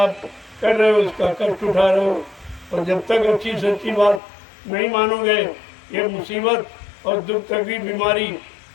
कर रहे हो, उसका कष्ट उठा रहे हो। और जब तक अच्छी सच्ची बात नहीं मानोगे, ये मुसीबत और दुख, तकलीफ, बीमारी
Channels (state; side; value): drops out; right; at 4.2 s